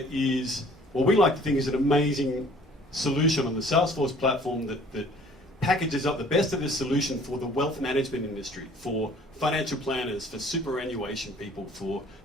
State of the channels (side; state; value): both; normal; correlation 0.53